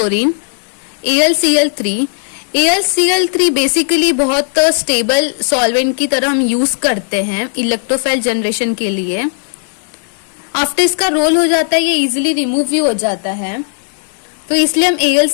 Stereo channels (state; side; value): silent; right; digital silence